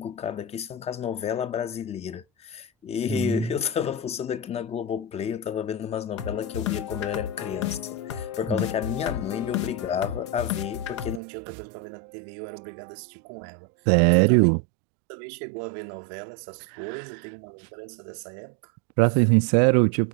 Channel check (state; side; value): drops out; left; at 11.2 s